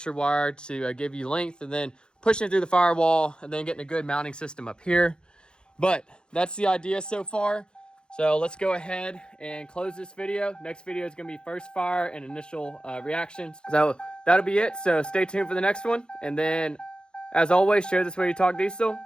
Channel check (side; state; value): right; late; 0.049 ms